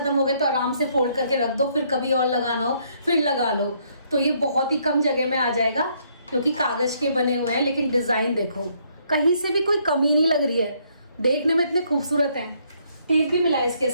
हो गए तो आराम से फोल्ड करके रख दो, फिर कभी और लगाना हो फिर लगा लो। तो ये बहुत ही कम जगह में आ जाएगा क्योंकि कागज के बने हुए हैं। लेकिन डिजाइन देखो, कहीं से भी कोई कमी नहीं लग रही है, देखने में इतने खूबसूरत हैं। टेप भी मिला है इसके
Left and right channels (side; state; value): both; inverted; correlation -0.69